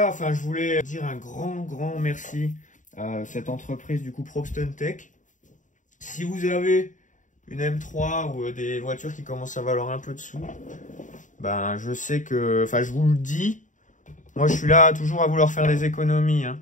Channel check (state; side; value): late; right; 0.37 ms